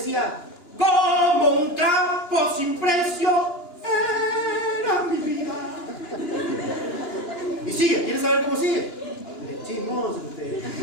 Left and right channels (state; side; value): late; right; 2.9 ms